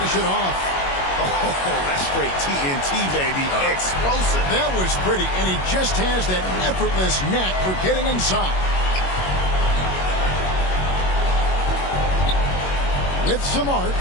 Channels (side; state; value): right; late; 21 ms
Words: it off. Oh, that's straight TNT, baby. Explosive. That was pretty, and he just has that effortless knack for getting inside. With some arc,